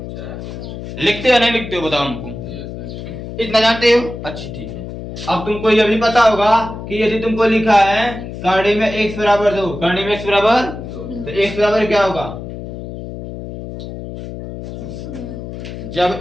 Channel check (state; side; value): noise; left; hum, 9 dB below the sound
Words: लिखते हो नहीं लिखते हो, बताओ हमको, इतना जानते हो, अच्छा ठीक है। अब तुमको यह भी पता होगा कि यदि तुमको लिखा है कांडी में x बराबर 2, कांडी में x बराबर, तो x बराबर क्या होगा,